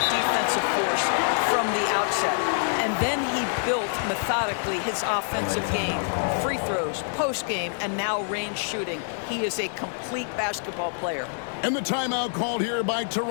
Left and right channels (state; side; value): silent; right; digital silence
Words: defensive force from the outset. And then he built methodically his offensive game. Free throws, post-game, and now range shooting. He is a complete basketball player. And the timeout called here by